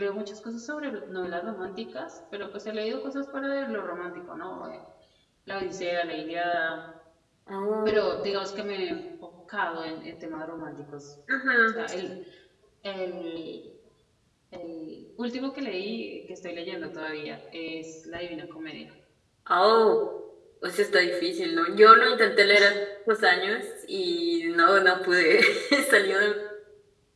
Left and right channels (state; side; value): identical; both; correlation 1.00